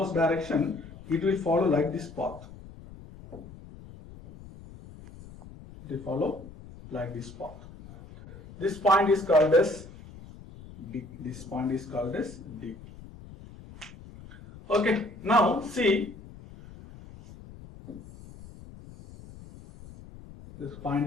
direction, it will follow like this path. It will follow like this path. This point is called as D. This point is called as D. Okay, now see, this point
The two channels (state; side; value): noise; left; rumble, 17 dB below the sound